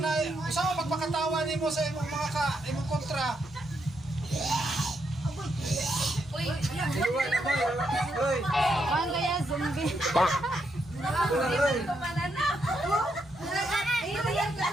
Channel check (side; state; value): both; normal; correlation 0.79